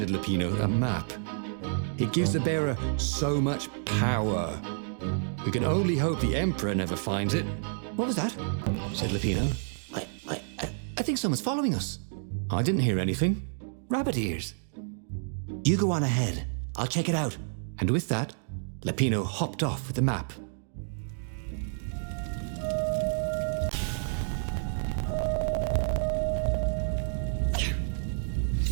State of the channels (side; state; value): left; silent; digital silence